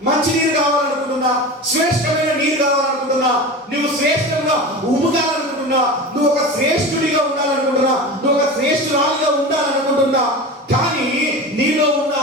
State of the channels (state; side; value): normal; both; correlation 0.29